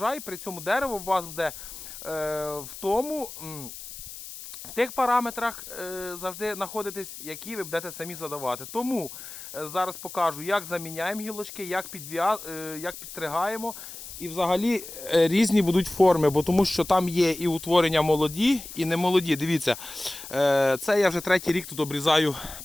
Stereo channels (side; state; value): left; noise; hiss, 12 dB below the sound